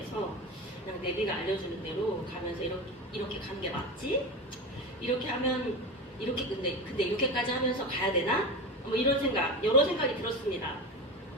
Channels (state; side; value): normal; both; correlation 0.24